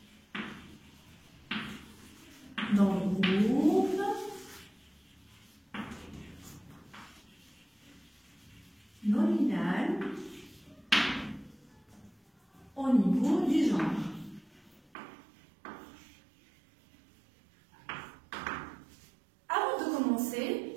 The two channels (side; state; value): left; drops out; at 14.8 s